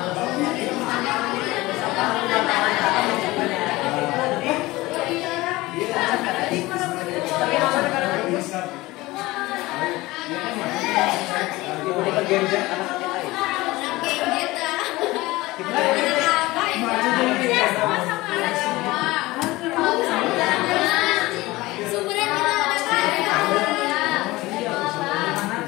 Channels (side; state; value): right; quieter; 19.8 dB